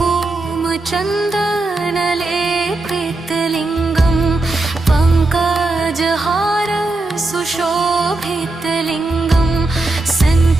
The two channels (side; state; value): left; quieter; 3.1 dB